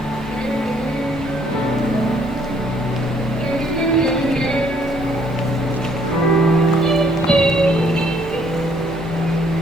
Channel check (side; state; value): both; normal; correlation 0.64